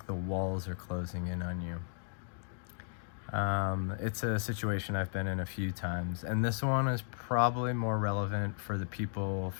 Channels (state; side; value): silent; right; digital silence